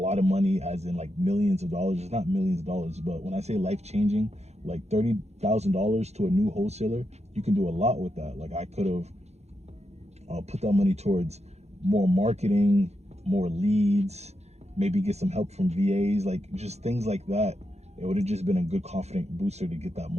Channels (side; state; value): left; late; 0.31 ms